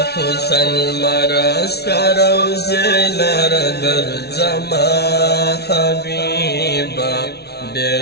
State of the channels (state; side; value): late; right; 0.48 ms